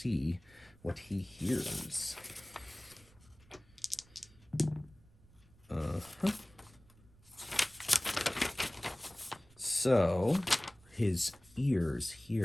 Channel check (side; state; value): right; noise; rumble, 27 dB below the sound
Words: what he hears. So his ears